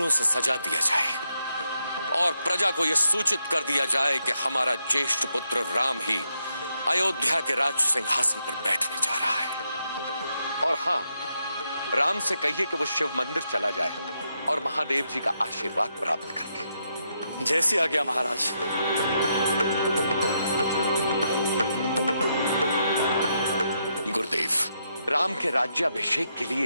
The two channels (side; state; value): both; inverted; correlation -0.80